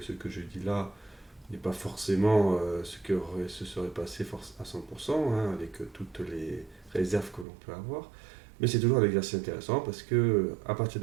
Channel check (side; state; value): left; drops out; at 7.5 s